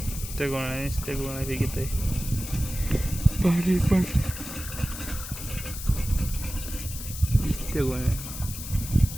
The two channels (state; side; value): noise; left; hiss, 9 dB below the sound